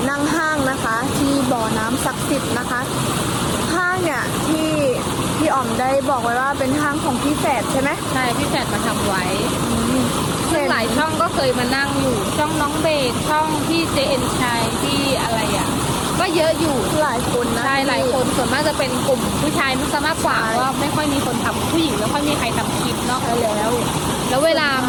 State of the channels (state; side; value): identical; both; correlation 1.00